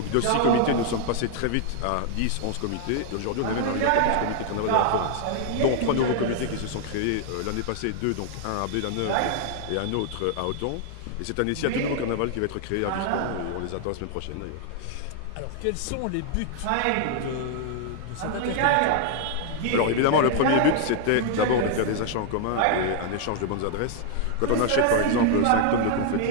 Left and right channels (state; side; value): different; both; correlation 0.00